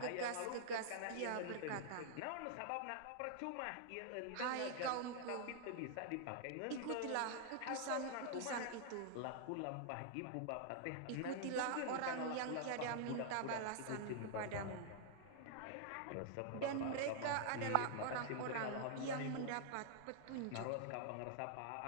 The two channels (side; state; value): both; different; correlation -0.01